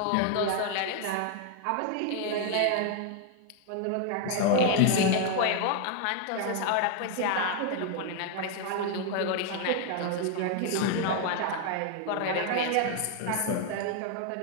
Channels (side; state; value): both; different; correlation 0.00